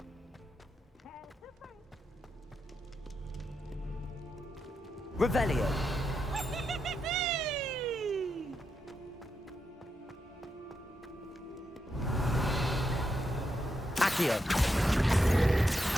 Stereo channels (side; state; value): both; normal; correlation 0.84